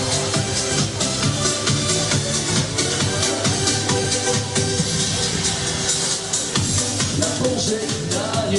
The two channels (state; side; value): identical; both; correlation 1.00